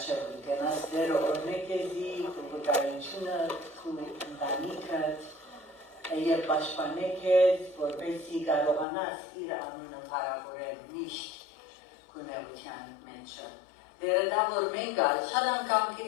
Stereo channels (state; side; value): drops out; right; at 8.8 s